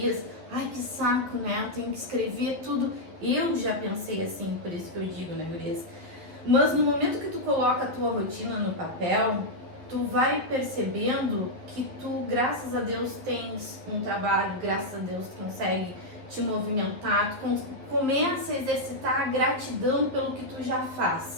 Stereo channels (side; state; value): left; late; 11 ms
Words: ai que saco, né? Eu tenho que escrever tudo. Eu já pensei assim, por isso que eu digo, né, gurias? Mas no momento que tu coloca a tua rotina no papel, tu vai percebendo que tu, graças a Deus, tens um trabalho, graças a Deus tu consegue te movimentar, tu começa a exercitar a gratidão pelo que tu já